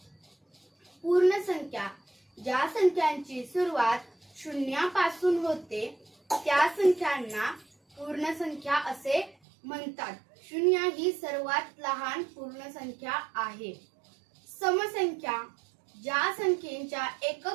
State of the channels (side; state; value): left; drops out; at 9.3 s